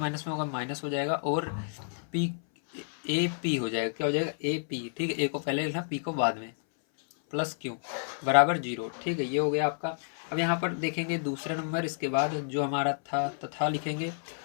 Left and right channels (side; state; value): right; silent; 58 dB below the other